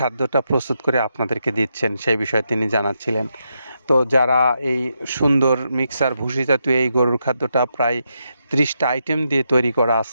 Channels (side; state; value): both; inverted; correlation -0.83